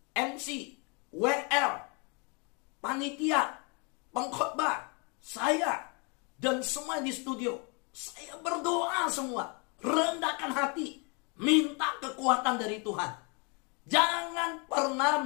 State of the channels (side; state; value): right; quieter; 33.1 dB